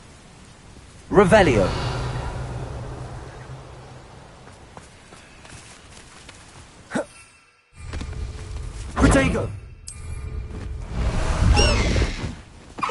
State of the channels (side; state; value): both; identical; correlation 1.00